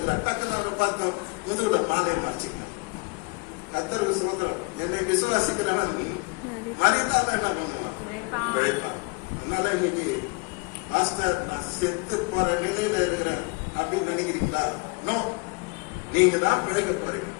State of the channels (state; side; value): quieter; right; 29.8 dB